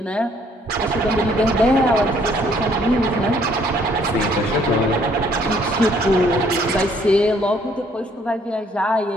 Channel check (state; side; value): normal; both; correlation 0.63